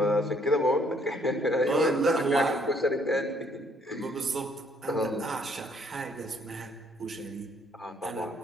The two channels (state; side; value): normal; both; correlation 0.65